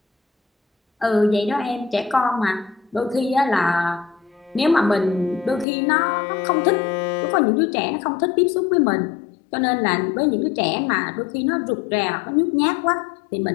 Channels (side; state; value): right; drops out; at 5.7 s